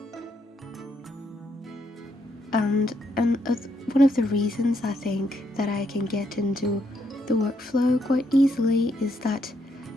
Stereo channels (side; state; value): both; normal; correlation 0.76